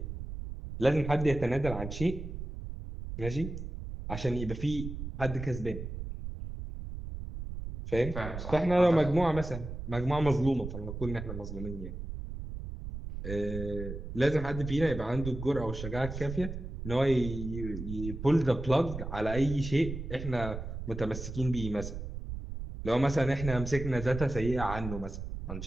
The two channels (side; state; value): right; noise; rumble, 7 dB below the sound